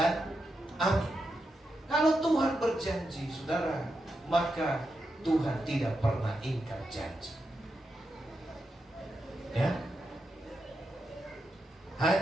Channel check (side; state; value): both; normal; correlation 0.86